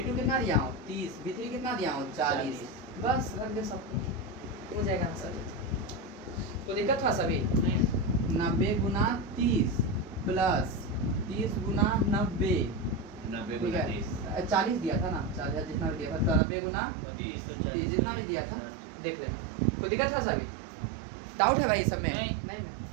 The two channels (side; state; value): left; drops out; at 16.4 s